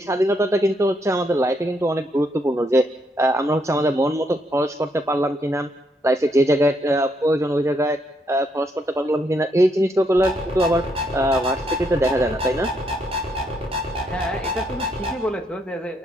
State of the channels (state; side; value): normal; both; correlation 0.75